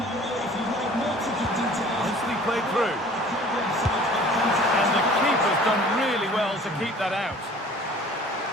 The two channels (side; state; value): both; normal; correlation 0.48